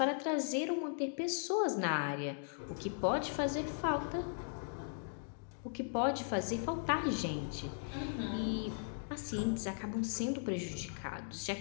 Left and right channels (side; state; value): right; silent; digital silence